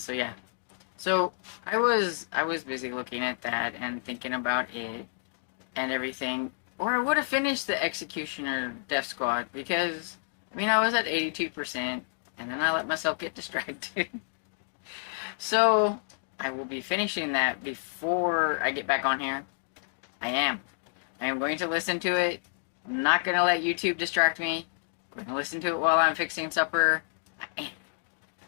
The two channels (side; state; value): right; silent; digital silence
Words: yeah. So I was busy looking at that and thinking about it and everything. Or I would have finished the Executioner Death Squad, because I mean I was at 82%, and then I let myself get distracted. So I will be finishing that before I get back on here. I am going to listen to it. I'm not going to let YouTube distract me. I'm going to listen to it while I'm fixing supper. I